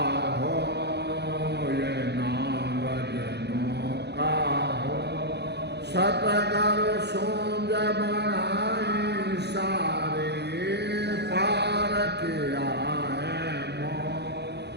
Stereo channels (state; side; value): late; left; 0.49 ms